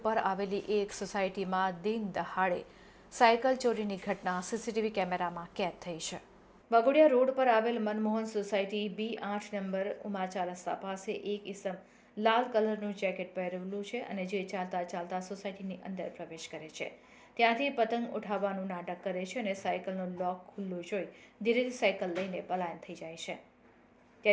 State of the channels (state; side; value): identical; both; correlation 1.00